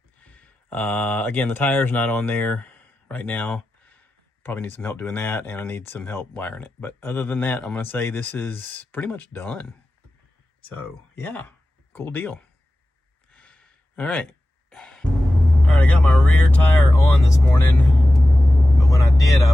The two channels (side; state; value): both; normal; correlation 0.94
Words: again, the tire's not on there right now. Probably need some help doing that, and I need some help wiring it. But other than that, I'm gonna say this is pretty much done. So yeah, cool deal. All right, I got my rear tire on this morning, but when I did, I